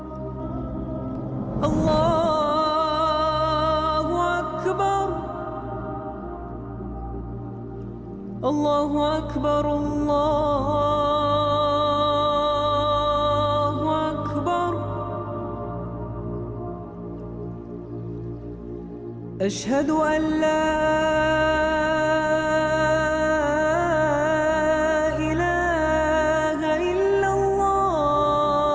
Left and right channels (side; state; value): both; identical; correlation 1.00